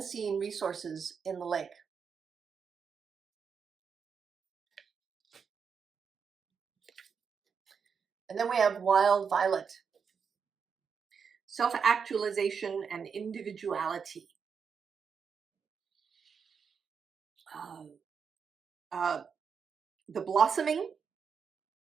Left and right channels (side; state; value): left; quieter; 6.3 dB